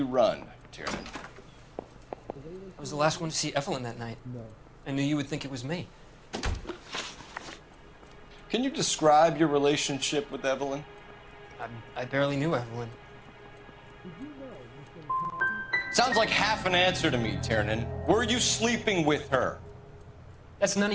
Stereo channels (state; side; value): identical; both; correlation 1.00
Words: run, Tiernan? I was the last one to see Evelyn that night. I knew you would think it was me. Can you describe your relationship with Evelyn? I barely knew Evelyn. Sounds like half an answer to me, Tiernan. Were you sleeping with her? That's none